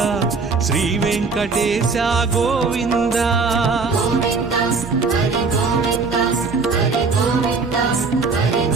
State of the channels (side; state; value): left; quieter; 4.4 dB